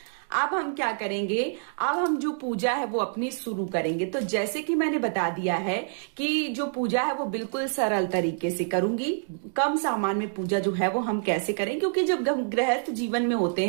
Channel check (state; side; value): silent; left; digital silence